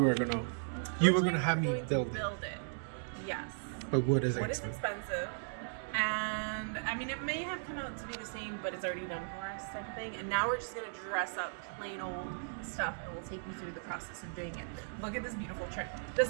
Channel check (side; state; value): left; silent; digital silence